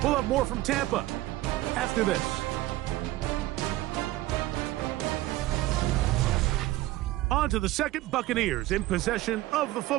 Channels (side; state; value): left; quieter; 16.9 dB